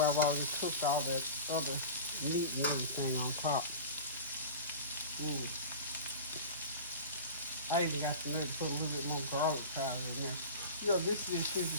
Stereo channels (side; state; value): both; inverted; correlation -0.33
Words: I've already cooked all that other meat and everything on top. I even got to put a little bit more garlic powder in there. You know, this dish here